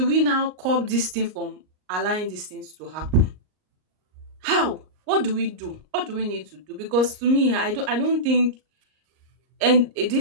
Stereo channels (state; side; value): late; left; 38 ms